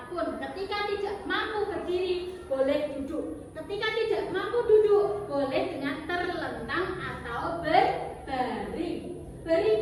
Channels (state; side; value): identical; both; correlation 1.00